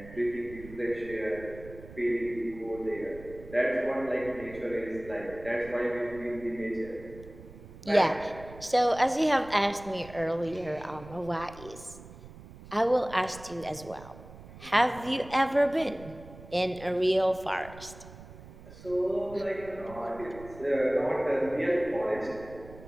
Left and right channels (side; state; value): right; noise; rumble, 17 dB below the sound